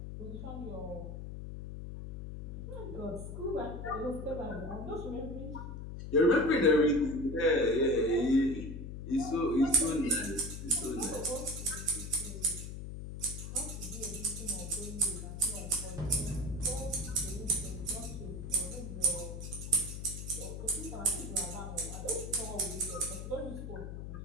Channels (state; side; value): noise; left; hum, 8 dB below the sound